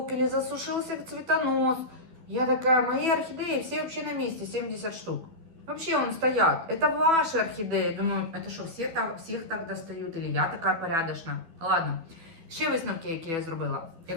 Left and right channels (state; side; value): late; left; 12 ms